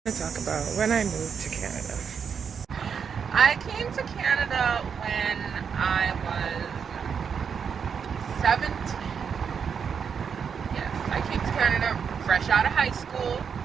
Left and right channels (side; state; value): left; quieter; 6.8 dB